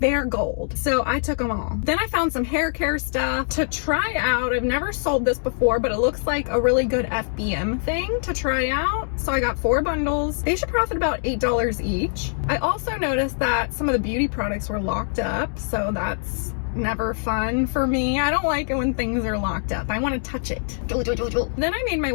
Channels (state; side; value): silent; right; digital silence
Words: gold. So I took them all. Then I found some hair care stuff to try out. I've never sold this before, but it looks like a really good FBM thing to try out. So I got 4 bundles. They should profit about $8 each. I also noticed that some of the beauty products were locked up, so that's never fun for me. I don't like it when things are locked up. I want to touch it. Then I made my